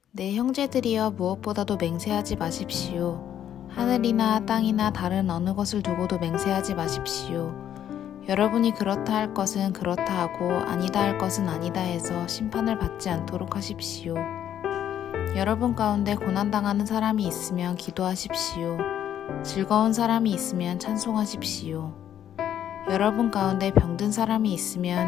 내 형제들이여 무엇보다도 맹세하지 마십시오. 하늘이나 땅이나 다른 어느 것을 두고도 맹세하지 마십시오. 여러분이 그렇다 할 것은 그렇다 하고 아니다 할 것은 아니다 해서 심판을 받지 않도록 하십시오. 여러분 가운데 고난당하는 사람이 있으면 기도하십시오. 즐거운 사람이 있으면 찬송하십시오. 여러분 가운데 병든 사람이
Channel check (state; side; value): quieter; right; 10.3 dB